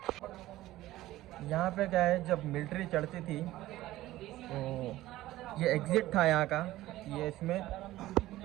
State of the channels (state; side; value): quieter; left; 16.0 dB